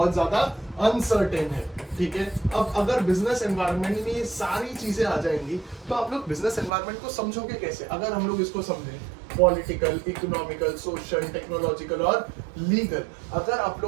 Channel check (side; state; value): left; drops out; at 6.7 s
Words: ज्यादा अनसर्टेन है, ठीक है। अब अगर बिजनेस एनवायरनमेंट में ये सारी चीजें आ जाएंगी तो आप लोग बिजनेस एनवायरनमेंट को समझोगे कैसे? अगर हम लोग इसको समझें पॉलिटिकल, इकोनॉमिकल, सोशल, टेक्नोलॉजिकल और लीगल, अगर आप